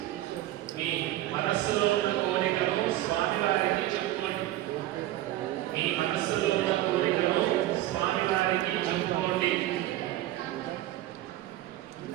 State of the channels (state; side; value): quieter; left; 15.0 dB